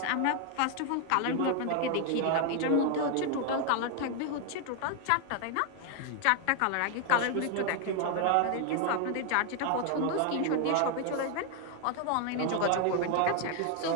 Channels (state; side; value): different; both; correlation 0.00